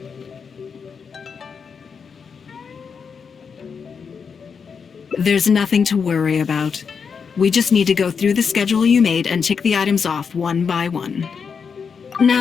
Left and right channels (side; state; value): right; quieter; 6.0 dB